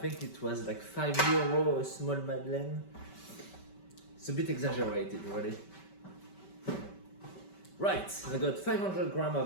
it was like €5 a small madeleine. It's a bit exaggerated, really. Right, I got 500 grams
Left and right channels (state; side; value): late; right; 5.2 ms